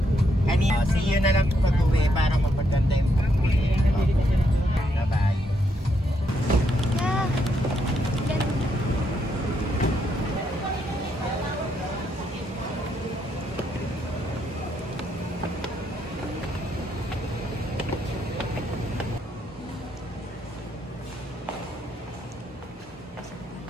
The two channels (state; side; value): normal; both; correlation 0.76